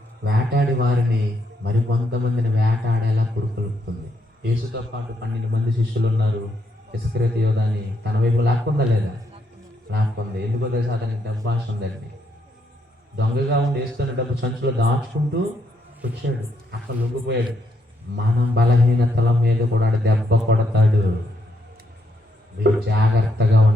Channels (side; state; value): both; normal; correlation 0.76